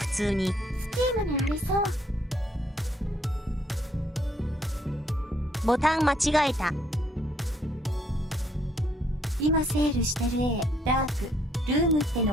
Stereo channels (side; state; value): both; normal; correlation 0.67